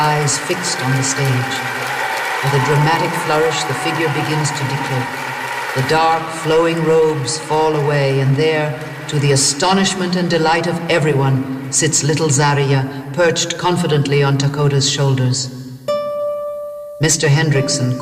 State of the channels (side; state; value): both; identical; correlation 1.00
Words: fixed on the stage. With a dramatic flourish, the figure begins to decloak. The dark, flowing robes fall away, and there, to the astonishment and delight of everyone, sits little Zariya, perched confidently on Takota's shoulders. Mr. Hendrickson,